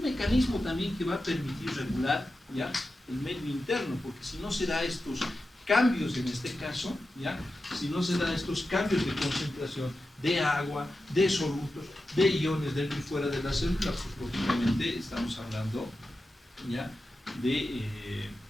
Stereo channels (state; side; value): normal; both; correlation 0.91